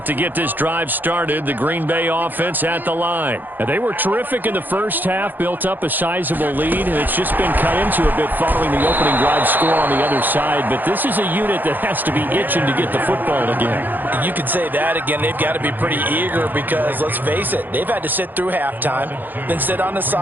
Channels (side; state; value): left; late; 0.087 ms